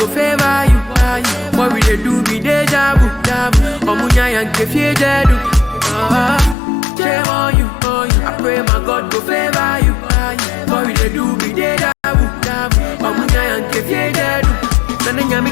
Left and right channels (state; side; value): drops out; right; at 6.6 s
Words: favor you. What will they do? Be deja vu. Omunya and kefie dedu. Shame on you, I pray my God go favor you. What will they do? Be deja vu. Omunya and kefie dedu. Nana nyami